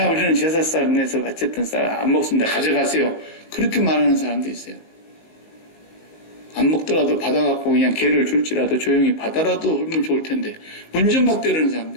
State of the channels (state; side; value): late; right; 19 ms